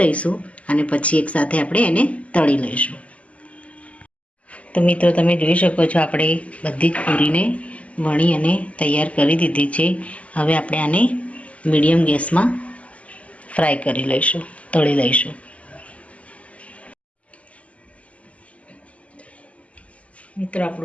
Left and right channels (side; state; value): right; late; 0.066 ms